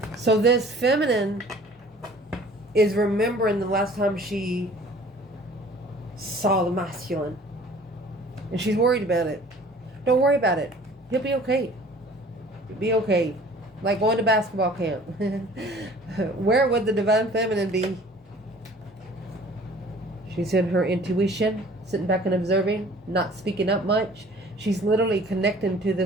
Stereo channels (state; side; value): normal; both; correlation 0.50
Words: So this feminine is remembering the last time she saw the masculine. And she's worried about it. Don't worry about it. He'll be okay. He'll be okay. Like going to basketball camp. Where would the divine feminine be? She's in her intuition, sitting back and observing, not speaking up much. She's literally connecting to